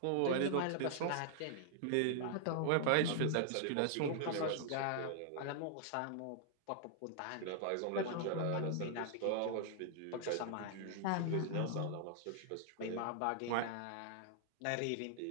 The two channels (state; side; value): different; both; correlation -0.01